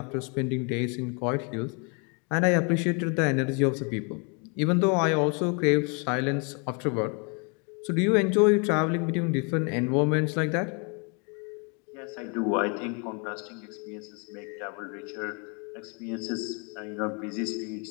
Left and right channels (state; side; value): quieter; right; 34.5 dB